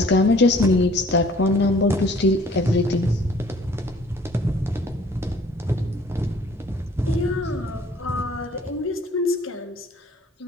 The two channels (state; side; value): normal; both; correlation 0.55